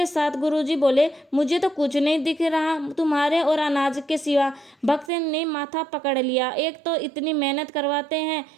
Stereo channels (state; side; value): drops out; left; at 5.1 s